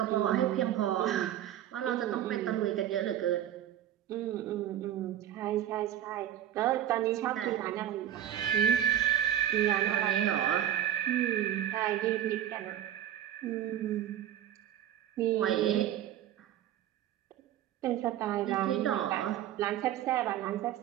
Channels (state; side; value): quieter; left; 11.2 dB